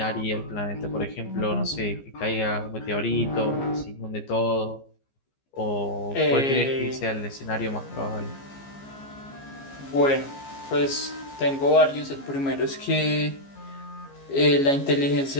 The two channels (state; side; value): late; right; 15 ms